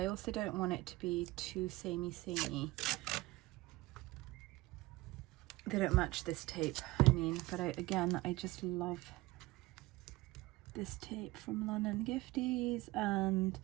also don't want it to be too samey. They don't match this tape, I mean, but again, I just love this tape from London Gifties. And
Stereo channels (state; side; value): quieter; left; 20.2 dB